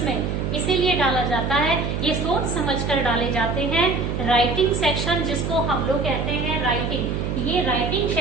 में इसीलिए डाला जाता है, ये सोच समझकर डाले जाते हैं. राइटिंग सेक्शन जिसको हम लोग कहते हैं राइटिंग, ये राइटिंग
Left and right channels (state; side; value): noise; right; hum, 2 dB below the sound